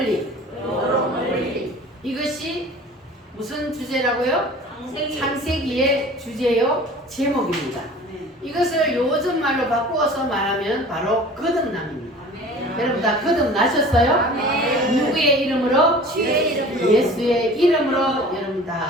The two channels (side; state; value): both; normal; correlation 0.43